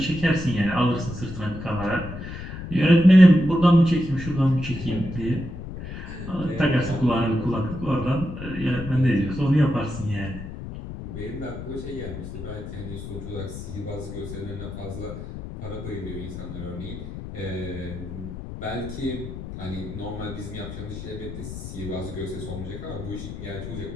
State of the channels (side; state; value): left; noise; rumble, 9 dB below the sound